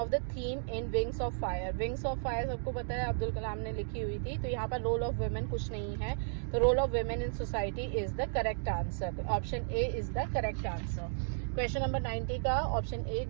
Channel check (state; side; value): silent; left; digital silence